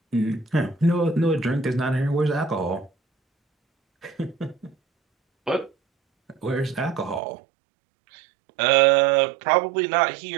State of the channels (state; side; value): drops out; left; at 7.2 s